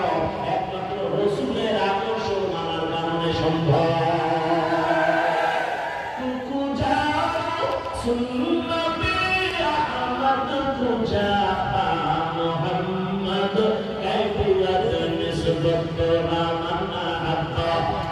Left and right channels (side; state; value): both; identical; correlation 1.00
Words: একমাত্র রাসূলের আদর্শ মানার কারণে সম্ভব। কুজা সুন্নতে আহমদ কুজা মুহাম্মদ কাইফিয়াত নিসবত রামানা হাত্তা